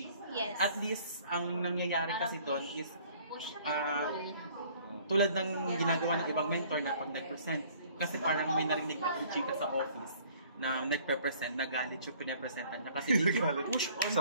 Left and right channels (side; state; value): both; inverted; correlation -0.56